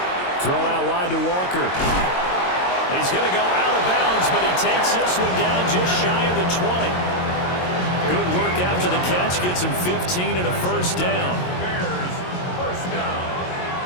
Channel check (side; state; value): right; late; 22 ms